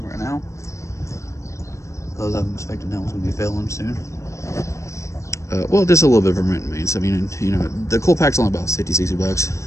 right now, because I'm expecting that one's going to be failing soon. Well, just a little bit of maintenance. I mean, you know, the cool pack's only about 50-60 bucks.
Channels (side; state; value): right; late; 0.14 ms